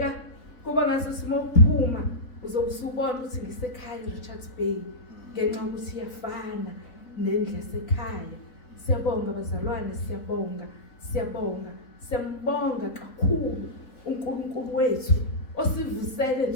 kuba ngaso simophuma uzobusubona ukuthi ngisekhaya eRichards Bay ngenxa ukuthi iyafana nendlu yasekhaya. Siyabonga bazalwane, siyambonga kakhulu uNkulunkulu wethu osivusele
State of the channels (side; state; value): right; late; 3.9 ms